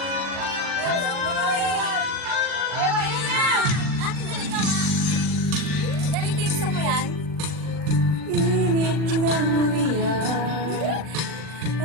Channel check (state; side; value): late; left; 40 ms